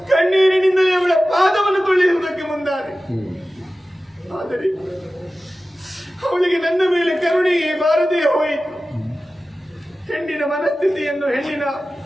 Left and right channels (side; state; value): both; normal; correlation 0.95